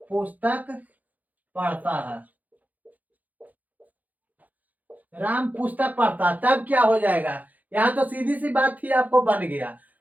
पुस्तक पढ़ता है, राम पुस्तक पढ़ता, तब क्या हो जाएगा? यहाँ तो सीधी सी बात थी, आपको बन गया।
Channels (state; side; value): late; left; 0.080 ms